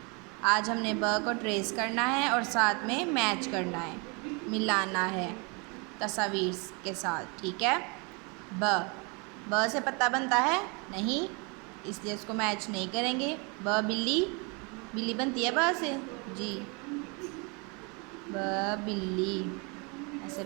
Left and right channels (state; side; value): quieter; left; 31.5 dB